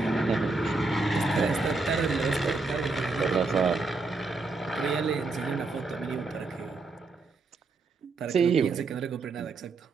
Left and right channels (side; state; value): left; quieter; 3.8 dB